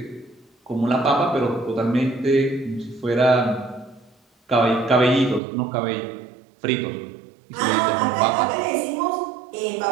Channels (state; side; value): drops out; left; at 5.4 s